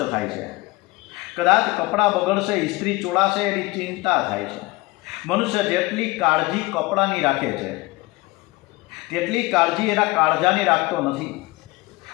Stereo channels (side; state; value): right; quieter; 22.2 dB